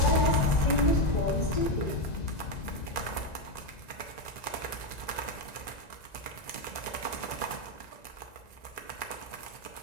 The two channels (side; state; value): right; late; 1.9 ms